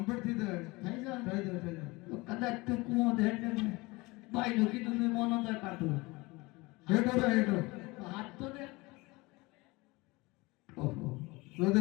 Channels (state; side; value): quieter; right; 23.4 dB